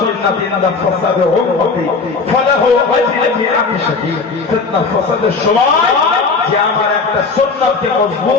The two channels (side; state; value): right; quieter; 4.4 dB